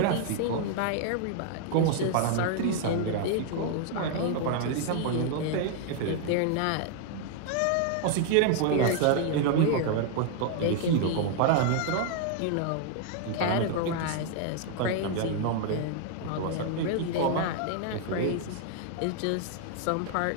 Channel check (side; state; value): both; different; correlation 0.00